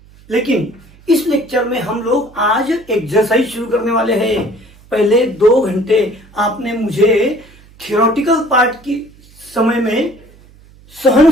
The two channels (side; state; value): right; noise; hum, 26 dB below the sound